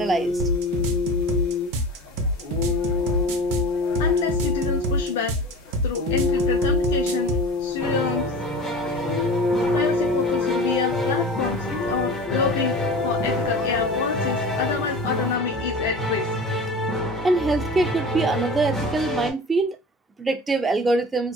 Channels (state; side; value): normal; both; correlation 0.35